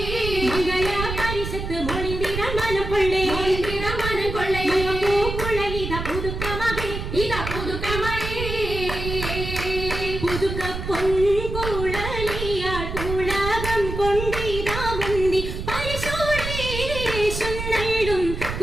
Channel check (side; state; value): right; noise; rumble, 5 dB below the sound